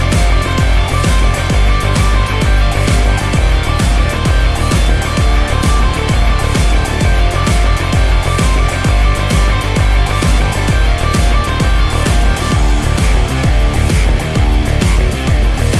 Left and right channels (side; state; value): both; identical; correlation 1.00